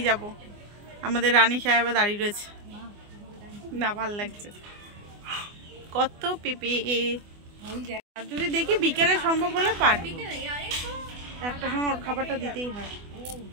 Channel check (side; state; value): left; late; 24 ms